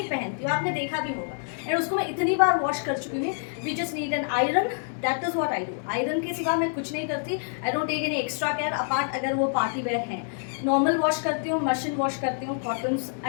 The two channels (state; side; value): silent; right; digital silence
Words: पहनती हूँ, आपने देखा भी होगा, एंड उसको मैं इतनी बार वॉश कर चुकी हूँ। We just need an iron, that is what I do. Iron के सिवा मैं कुछ नहीं करती, I don't take any extra care apart अगर वो पार्टी वेयर हैं। नॉर्मल वॉश करती हूँ, मशीन वॉश करती हूँ, cottons,